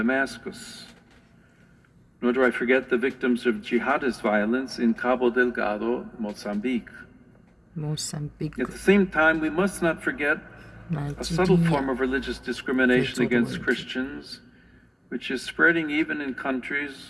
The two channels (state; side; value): identical; both; correlation 1.00